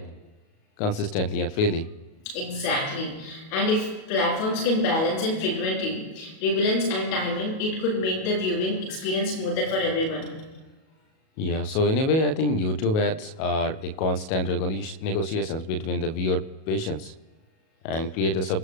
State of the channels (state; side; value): late; right; 37 ms